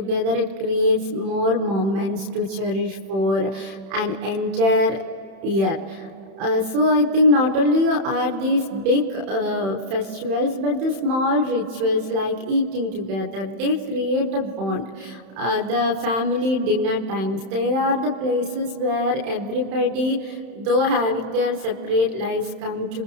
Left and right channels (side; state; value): left; late; 31 ms